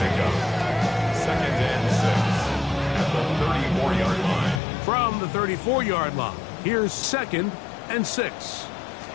2nd and 6 at the 34-yard line. From the 34-yard line, here's 2nd and 6.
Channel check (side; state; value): right; drops out; at 4.6 s